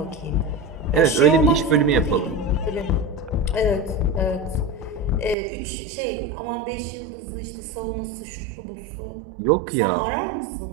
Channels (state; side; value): drops out; left; at 5.4 s